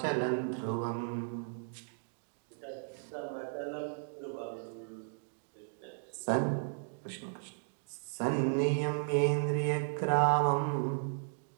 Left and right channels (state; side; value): silent; left; digital silence